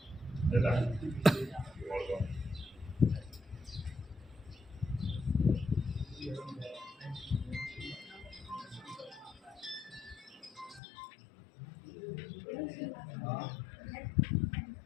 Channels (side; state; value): right; drops out; at 10.8 s